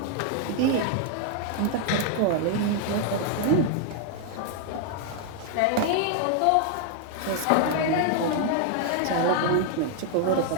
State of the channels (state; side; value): different; both; correlation 0.00